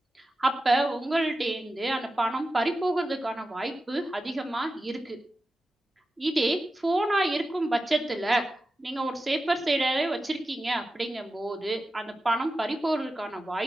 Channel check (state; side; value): normal; both; correlation 0.93